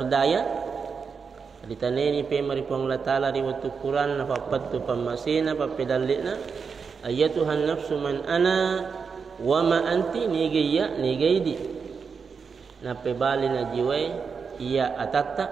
Ditaneni pe maripong Allah Ta'ala riwayat Quran apa pattu pamasina apa pedalina ayatuhan nafsu man ana wa ma anti nigaya nigaidi. Na pe bali na jiwa iya atata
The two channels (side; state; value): left; quieter; 5.7 dB